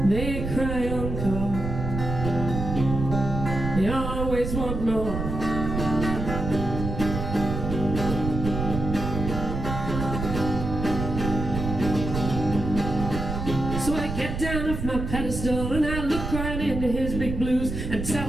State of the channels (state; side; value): noise; right; rumble, 4 dB below the sound